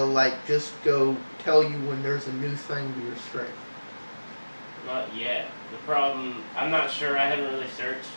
like just go tell you when there's a new thing to your string? Not yet. The problem, I'm not sure. I haven't really searched.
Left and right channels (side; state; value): both; inverted; correlation -1.00